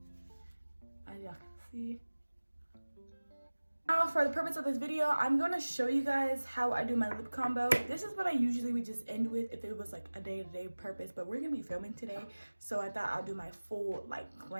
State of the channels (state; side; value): inverted; both; correlation -1.00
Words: as y'all can see. Now, for the purpose of this video, I'm gonna show you guys how I do my lip combo. This is what I usually would just end with if it was like a day-to-day purpose, but we're gonna be filming today, so I thought I'll do my full like